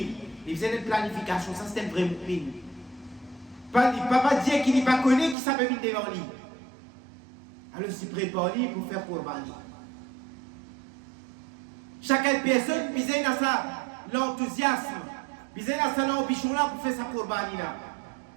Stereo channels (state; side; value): drops out; left; at 5.4 s